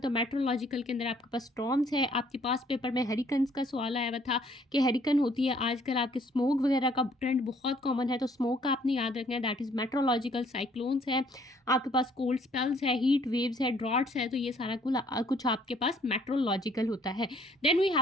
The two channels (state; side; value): normal; both; correlation 0.62